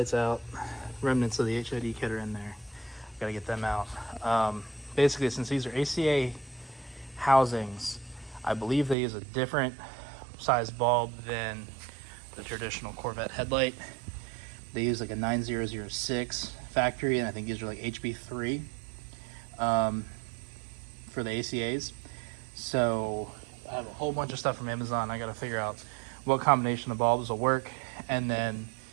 out, remnants of the HID kit are in there. Gotta get them out. Basically, since these are ACA housings, I believe they use a different size bulb than the traditional Corvette headlight. They use like a 9006 factory, and I think these are like HB3 for the ACAs. So I have a whole bunch of stuff from Amazon. I gotta figure out what combination of bulbs will work. And then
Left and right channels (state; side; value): drops out; left; at 9.0 s